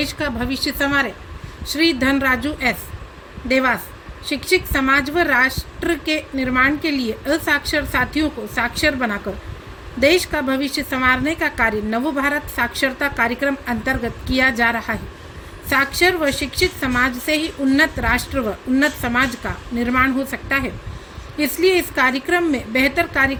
का भविष्य संवारे। श्री धनराजू एस देवास। शिक्षित समाज व राष्ट्र के निर्माण के लिए असाक्षर साथियों को साक्षर बनाकर देश का भविष्य संवारने का कार्य नवभारत साक्षरता कार्यक्रम अंतर्गत किया जा रहा है। साक्षर व शिक्षित समाज से ही उन्नत राष्ट्र व उन्नत समाज का निर्माण हो सकता है, इसलिए इस कार्यक्रम में बेहतर कार्य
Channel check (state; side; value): identical; both; correlation 1.00